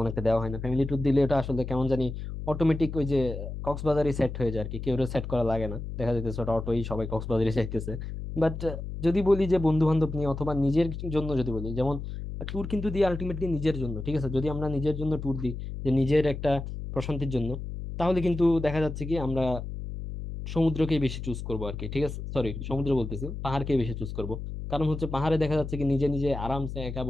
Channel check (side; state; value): left; noise; hum, 7 dB below the sound